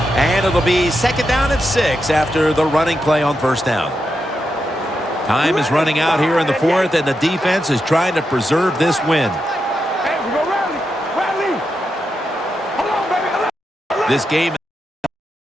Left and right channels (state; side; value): normal; both; correlation 0.86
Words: And it'll be second down at 6 after the running play on first down. Time is running out here in the 4th, and the defense is trying to preserve this win. This game